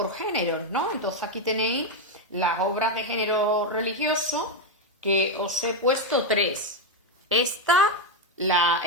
géneros, ¿no? Entonces aquí tenéis las obras de género religioso que os he puesto 3. Esta, la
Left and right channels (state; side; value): normal; both; correlation 0.05